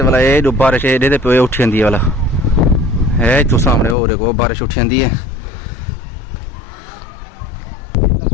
ये जो बारिश एडे पे उठी जाती वाला है, तू सामने हो देखो बारिश उठी जाती है।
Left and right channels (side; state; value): right; drops out; at 4.0 s